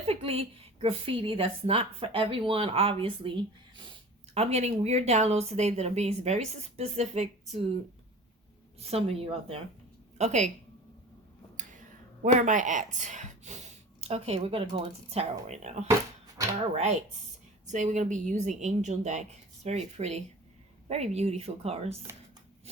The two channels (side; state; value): both; normal; correlation 0.39